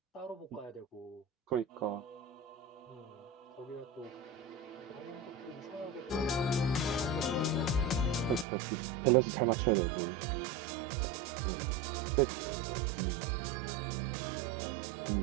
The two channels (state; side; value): drops out; left; at 8.5 s